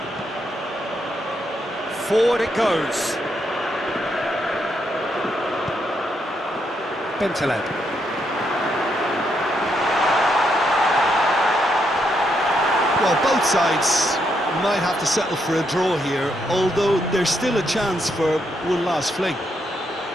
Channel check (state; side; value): normal; both; correlation 0.78